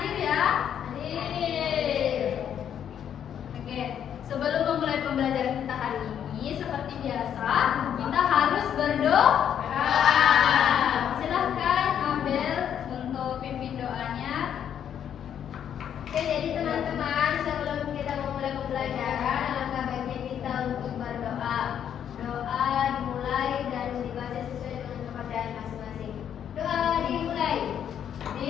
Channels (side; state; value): right; quieter; 9.2 dB